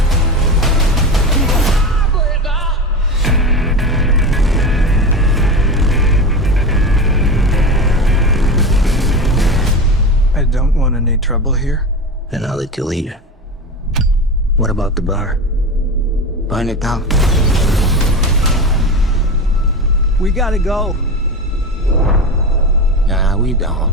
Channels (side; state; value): both; normal; correlation 0.24